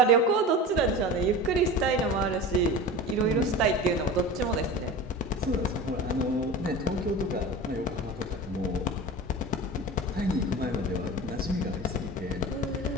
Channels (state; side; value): normal; both; correlation 0.33